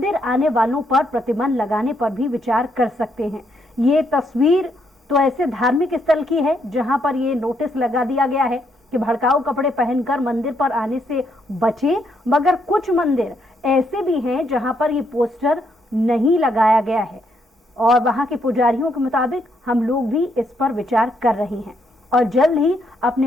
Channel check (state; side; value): normal; both; correlation 0.75